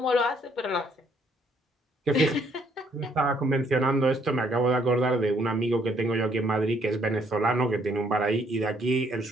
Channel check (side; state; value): both; normal; correlation 0.67